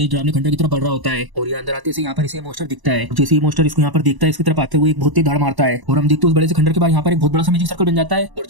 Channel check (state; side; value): late; left; 1.0 ms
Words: डरावने खंडर की तरफ बढ़ रहा होता है और ये अंदर आते से यहाँ पर इसे मोस्टर दिखता है। जैसे ही मोस्टर इसको यहाँ पर देखता है इसकी तरफ आते हुए एक बहुत ही धाड़ मारता है और हम देखते हैं उस बड़े से खंडर के बाद यहाँ पर एक बहुत बड़ा सा मैजिक सर्कल बन जाता है और